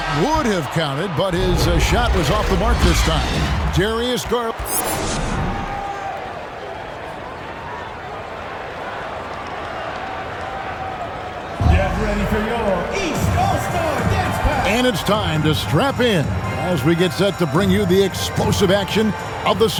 would have counted, but his shot was off the mark this time. Darius Garland. Get ready for your East All-Star Dance Pass. And it's time to strap in as we get set to bring you the explosive action of the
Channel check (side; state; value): both; identical; correlation 1.00